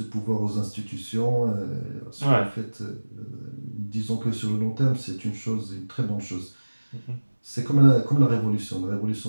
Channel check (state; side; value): inverted; both; correlation -1.00